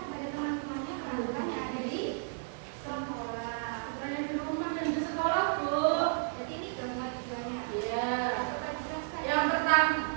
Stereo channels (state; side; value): silent; left; 56 dB below the other